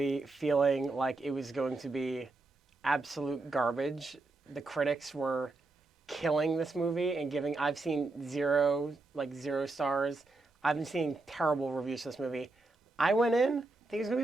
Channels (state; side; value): quieter; left; 3.2 dB